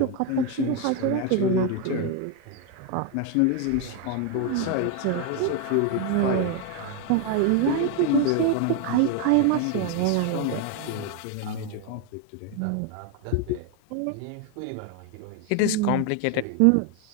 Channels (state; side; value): different; both; correlation 0.01